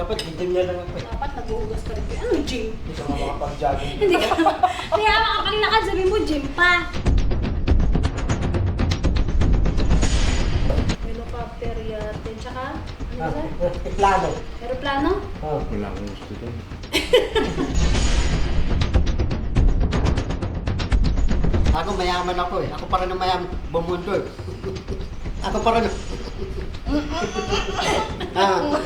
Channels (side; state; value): both; identical; correlation 1.00